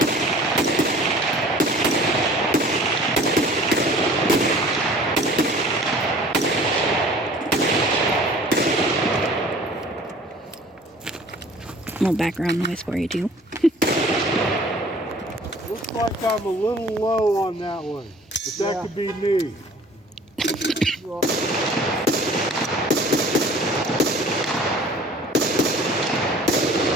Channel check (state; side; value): normal; both; correlation 0.48